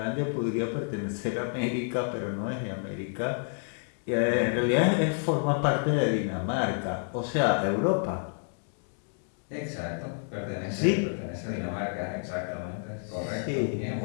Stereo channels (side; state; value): right; silent; 55 dB below the other